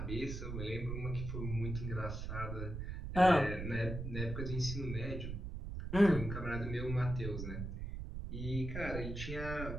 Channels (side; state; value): right; noise; rumble, 5 dB below the sound